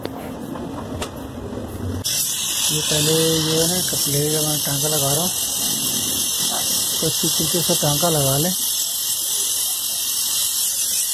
ये पहले जो है ना कपलेगा मैं टांका लगा रहा हूँ, तो अच्छी तरीके से टांका लगा लें।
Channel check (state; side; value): identical; both; correlation 1.00